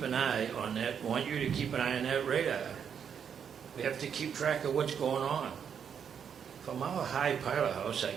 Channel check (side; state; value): left; quieter; 7.6 dB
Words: an eye on that. I want you to keep an eye on that radar. We have to keep track of what's going on. From our high pilot house, I